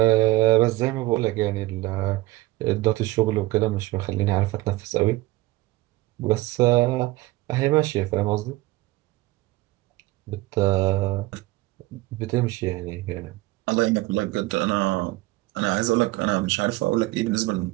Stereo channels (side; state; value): left; quieter; 19.2 dB